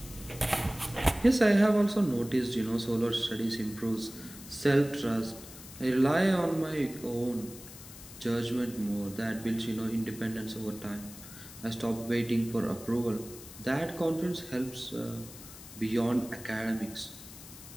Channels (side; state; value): left; noise; hiss, 16 dB below the sound